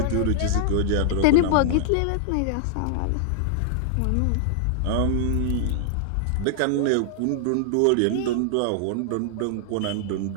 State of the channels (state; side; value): different; both; correlation -0.01